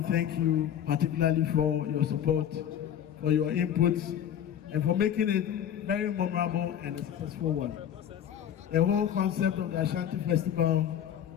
to thank you particularly for your support, for your inputs, and for making it very memorable and a successful one. The whole concept of the Ashanti Festival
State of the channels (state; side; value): quieter; right; 9.7 dB